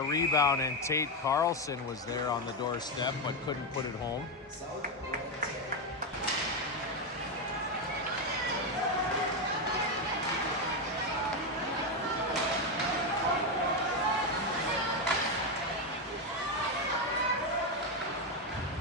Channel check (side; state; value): both; normal; correlation 0.08